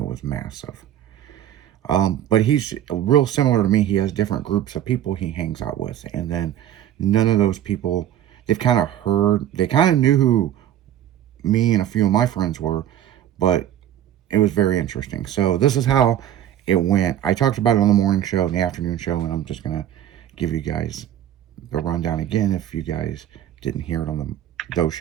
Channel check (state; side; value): quieter; left; 11.1 dB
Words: was massive. But he's real similar to me. He has different groups of people he hangs out with, and then none of those people, they kind of knew who me and a few of my friends were, but it was very interesting. So this is how it went. I talked about it on the morning show and the afternoon show, and I'm just gonna give you guys the rundown again if you guys didn't hear it on those